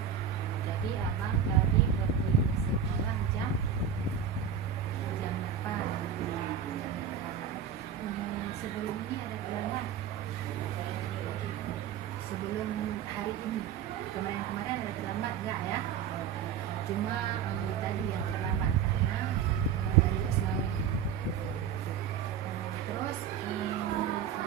Jadi abang tadi pergi ke sekolah jam 8. Sebelum ini ada terlambat. Sebelum hari ini, kemarin ada terlambat enggak ya? Cuma tadi yang terlambat karena terus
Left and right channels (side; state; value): left; quieter; 7.9 dB